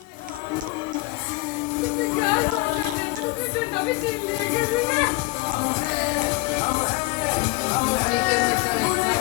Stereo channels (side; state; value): right; quieter; 21.9 dB